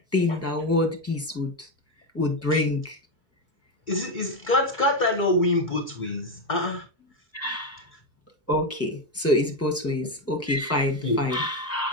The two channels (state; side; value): normal; both; correlation 0.10